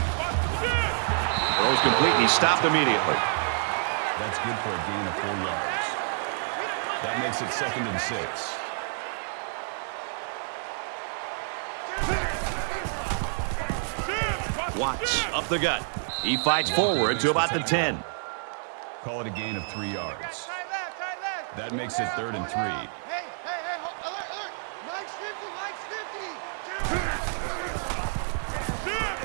Throws complete, and he stopped immediately. That's good for a gain of 4 yards. That makes it 2nd and 6. Watts up the gut. He fights forward to about the 10. Call it a gain of 3 yards. Tight left. Tight left. That makes it 3rd and 3. Hey. Alert. Mike's 50. Mike's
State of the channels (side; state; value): left; silent; 55 dB below the other